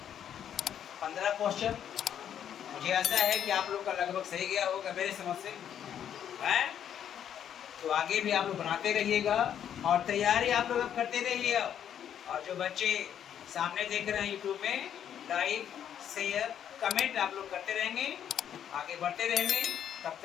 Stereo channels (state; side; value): quieter; right; 9.4 dB